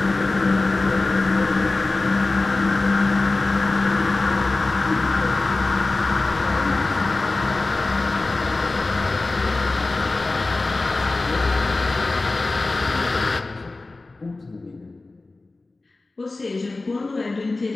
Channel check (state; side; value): quieter; right; 3.3 dB